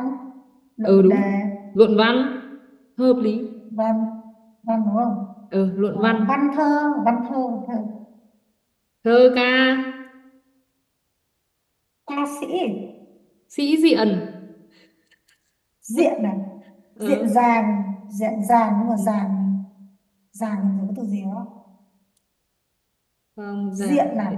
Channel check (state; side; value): identical; both; correlation 1.00